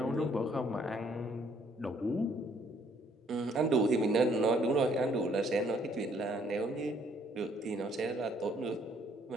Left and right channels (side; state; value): both; normal; correlation 0.65